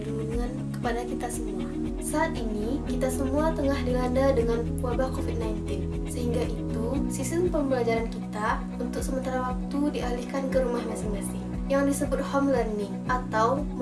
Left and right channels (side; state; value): both; identical; correlation 1.00